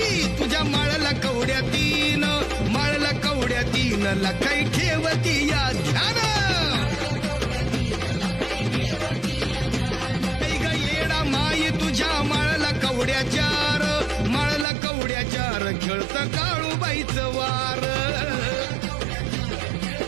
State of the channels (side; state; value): left; drops out; at 14.7 s